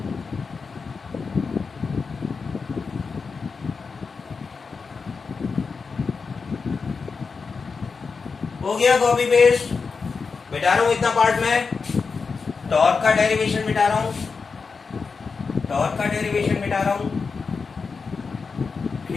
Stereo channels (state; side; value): quieter; right; 4.9 dB